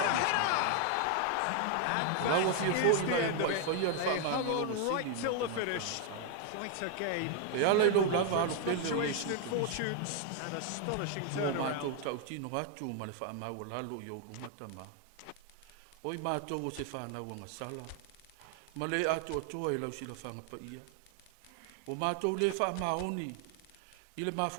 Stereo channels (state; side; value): different; both; correlation 0.00